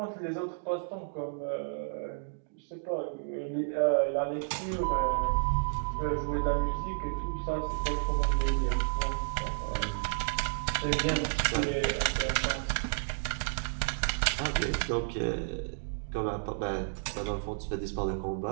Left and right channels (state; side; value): silent; left; digital silence